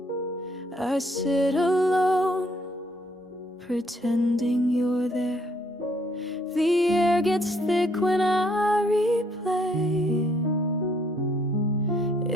I sit alone, pretending you're there. The air gets thick when I replay.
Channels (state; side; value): normal; both; correlation 0.67